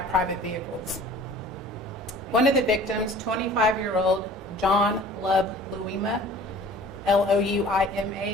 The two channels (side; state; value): both; normal; correlation 0.47